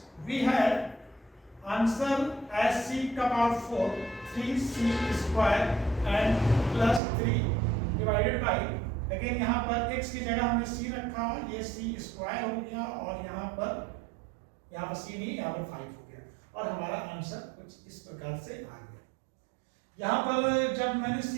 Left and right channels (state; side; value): drops out; left; at 7.0 s